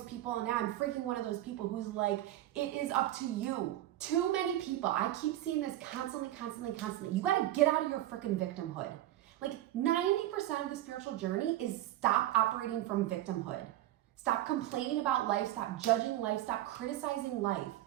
people, and now I'm freaking one of those people who's like, it is up to you. Too many people, I keep seeing this constantly. You gotta get out of your freaking victimhood. Like 90% of the spiritual journey is stop operating from victimhood. Stop complaining about life, stop judging life, stop criticizing life.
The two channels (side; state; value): left; quieter; 14.1 dB